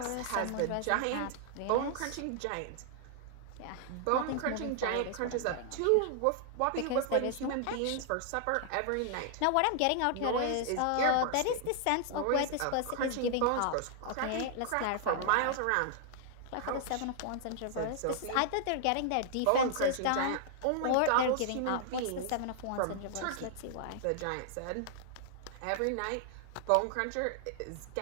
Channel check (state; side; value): different; both; correlation -0.01